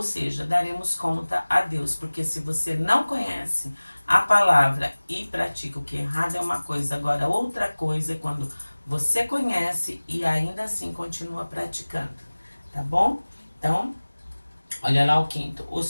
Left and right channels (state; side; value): inverted; both; correlation -1.00